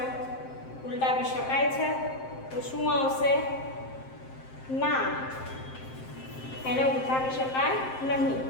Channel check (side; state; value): right; late; 7.7 ms